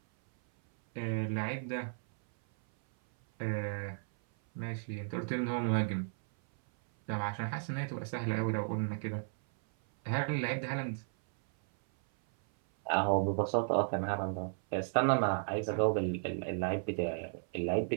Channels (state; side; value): silent; left; 55 dB below the other